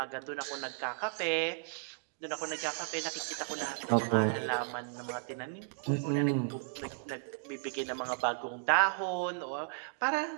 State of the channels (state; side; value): silent; left; digital silence